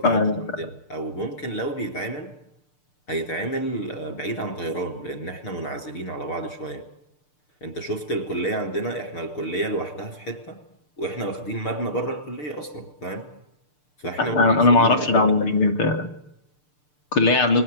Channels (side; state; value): right; late; 6.7 ms